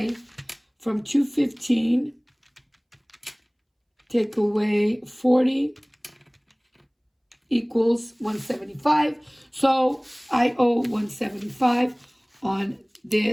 from 215, take away 40 equals 175. So I owe 175 on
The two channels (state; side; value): identical; both; correlation 1.00